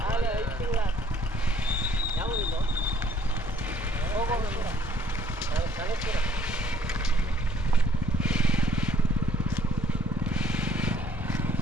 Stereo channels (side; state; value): both; normal; correlation 0.61